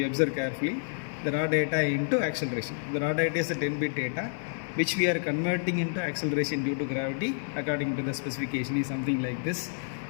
observe carefully, the raw data into acceleration. The raw data is a 10-bit data which we are converting into acceleration due to gravity according to the specification is something like this.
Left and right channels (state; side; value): silent; right; digital silence